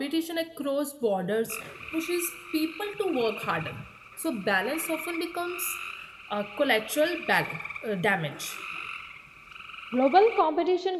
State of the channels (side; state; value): both; identical; correlation 1.00